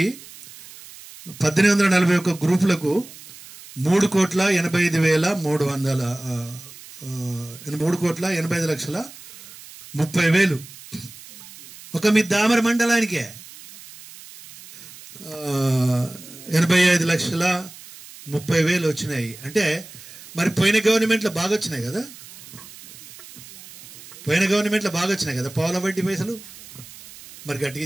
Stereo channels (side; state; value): right; noise; hiss, 18 dB below the sound